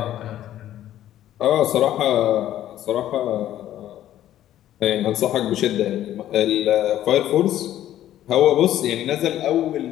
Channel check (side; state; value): right; quieter; 12.4 dB